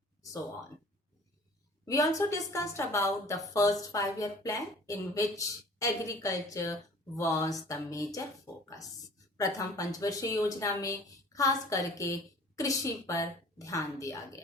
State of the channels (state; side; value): normal; both; correlation 0.48